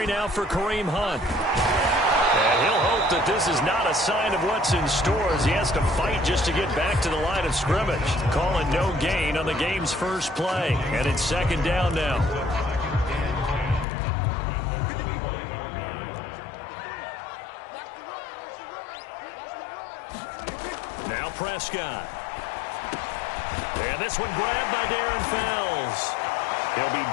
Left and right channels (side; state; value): right; drops out; at 13.9 s